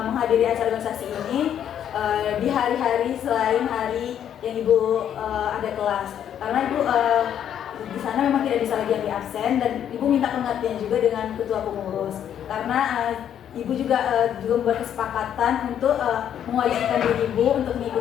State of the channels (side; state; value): right; quieter; 9.6 dB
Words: menghadiri acara organisasi ini di hari-hari selain hari yang Ibu ada kelas, karena Ibu di sana memang tidak bisa lagi ambil absen dan Ibu minta pengertian juga dengan ketua pengurus karena Ibu juga membuat kesepakatan untuk mewajibkan diri Ibu untuk